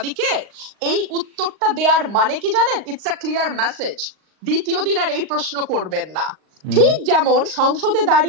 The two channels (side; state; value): left; late; 38 ms